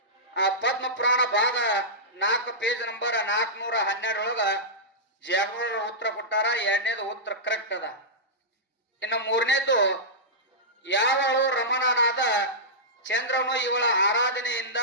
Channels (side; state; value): both; normal; correlation -0.14